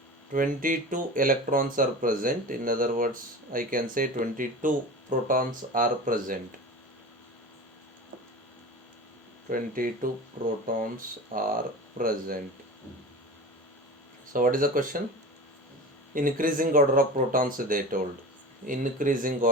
22 electrons are present. In other words, I can say 22 protons are present. 22 protons are present. So what is the question? Increasing order of protons they told. Increasing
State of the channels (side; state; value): both; normal; correlation 0.32